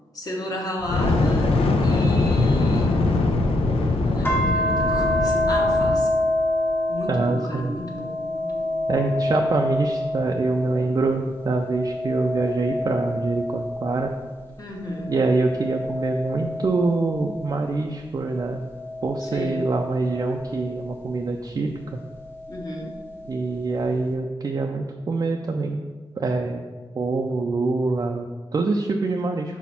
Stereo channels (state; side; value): normal; both; correlation 0.78